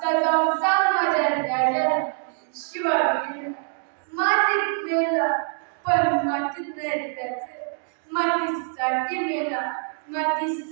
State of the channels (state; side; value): silent; left; 62 dB below the other